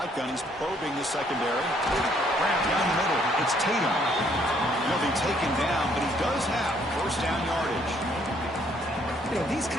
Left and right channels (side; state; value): both; normal; correlation 0.66